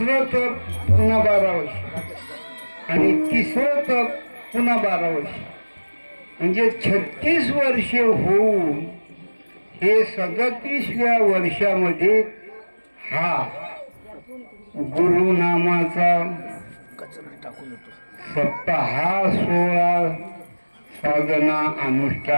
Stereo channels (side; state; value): both; inverted; correlation -1.00